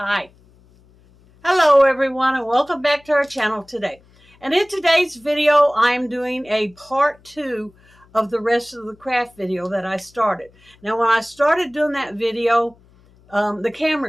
Hi. Hello everyone and welcome back to our channel today. And in today's video I'm doing a part 2 of the rest of the craft video that I started. Now when I started doing that video, the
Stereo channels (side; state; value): left; noise; hum, 30 dB below the sound